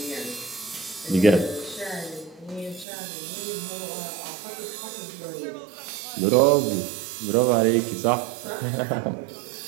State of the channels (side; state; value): left; drops out; at 2.9 s